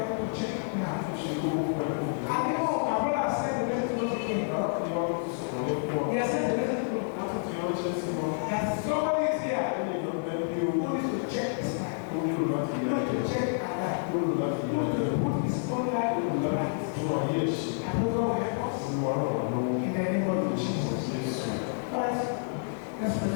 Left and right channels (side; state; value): right; silent; 58 dB below the other